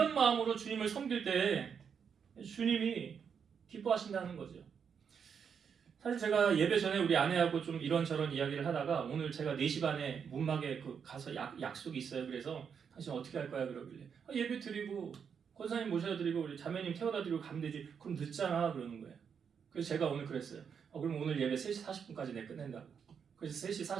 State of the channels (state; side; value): quieter; left; 7.0 dB